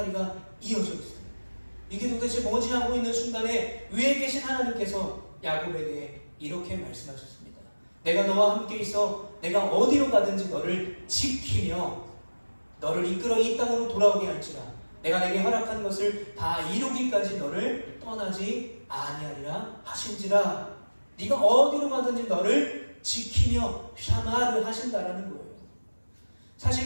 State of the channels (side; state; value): both; inverted; correlation -1.00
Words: 이어져 있어요. 이게 도대체 뭐지 하고 있는 순간에 위에 계신 하나님께서 야곱에게 이렇게 말씀하셨습니다. 내가 너와 함께 있어 내가 어디로 가든지 너를 지키며 너를 이끌어 이 땅으로 돌아오게 할지라 내가 내게 허락한 것을 다 이루기까지 너를 떠나지 아니하리라 하신지라. 네가 어디로 가든지 너를 지키며 샤마를 하신다라는 거예요.